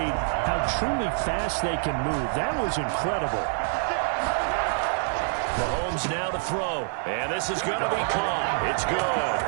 how truly fast they can move. That was incredible. Mahomes now to throw, and this is going to be caught. It's good.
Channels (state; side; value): silent; left; digital silence